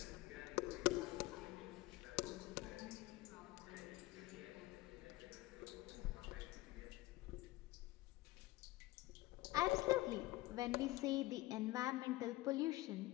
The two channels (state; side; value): quieter; right; 18.7 dB